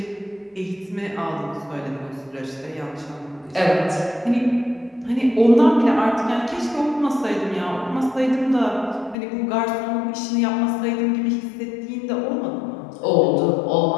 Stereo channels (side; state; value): right; drops out; at 9.2 s